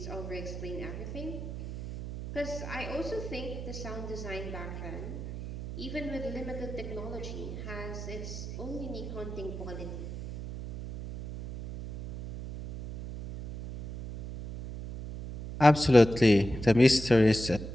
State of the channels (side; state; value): right; noise; hum, 8 dB below the sound